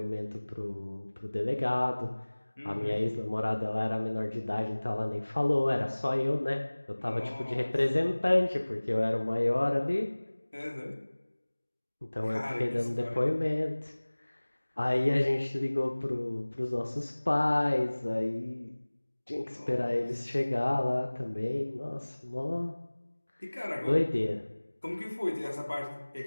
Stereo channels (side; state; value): both; inverted; correlation -1.00